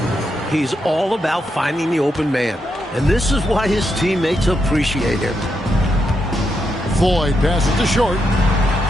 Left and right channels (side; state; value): both; normal; correlation 0.82